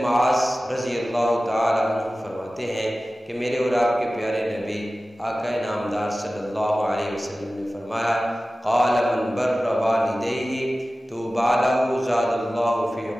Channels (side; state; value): both; normal; correlation 0.96